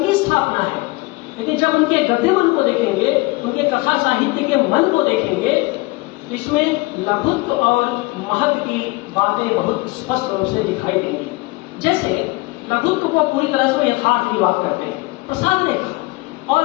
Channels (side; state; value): right; quieter; 23.7 dB